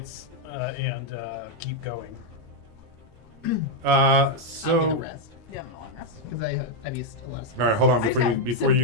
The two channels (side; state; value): left; late; 13 ms